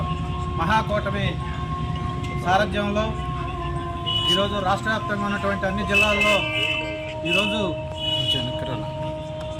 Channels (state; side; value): identical; both; correlation 1.00